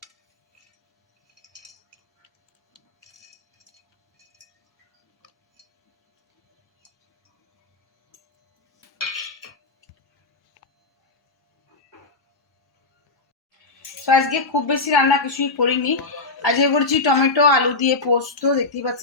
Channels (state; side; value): quieter; right; 3.6 dB